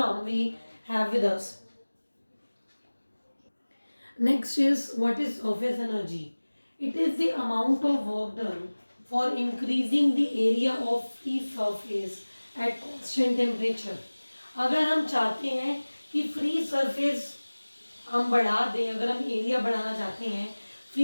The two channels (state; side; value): inverted; both; correlation -1.00